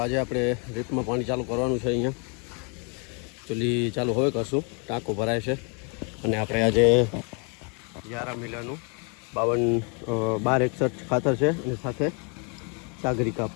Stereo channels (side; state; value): right; quieter; 35.9 dB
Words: આજે આપણે રીપમાં પાણી ચાલુ કરવાનું છે. અહીંયા ચૂલી ચાલુ હવે કરશું, ટાંકો ભરાય છે. અને આપણે આજે 11 મિલાનું 1261 ખાતર છે અને સાથે સાગરિકા